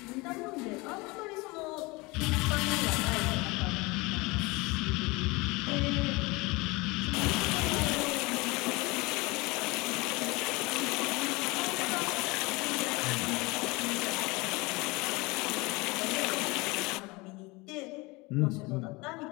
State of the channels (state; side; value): quieter; right; 24.5 dB